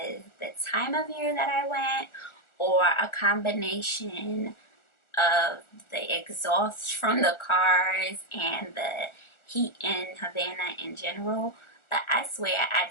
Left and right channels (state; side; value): late; right; 1.4 ms